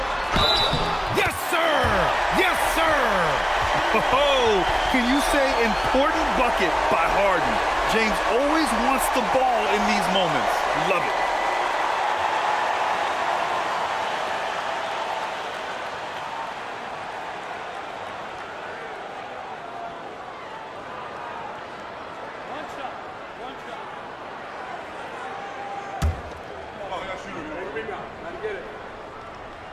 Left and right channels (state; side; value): identical; both; correlation 1.00